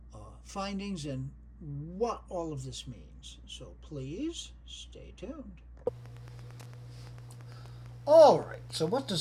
findings and what all of this means. So please stay tuned. All right, so what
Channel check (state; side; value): identical; both; correlation 1.00